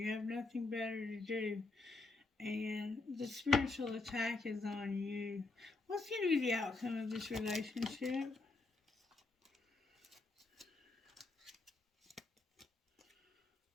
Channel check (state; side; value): quieter; right; 3.5 dB